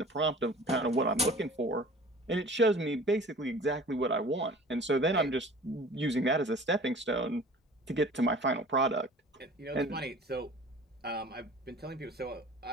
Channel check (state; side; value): normal; both; correlation 0.44